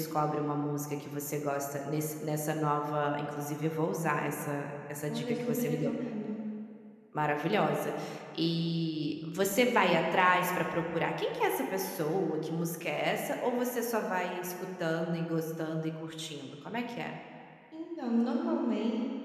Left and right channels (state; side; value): identical; both; correlation 1.00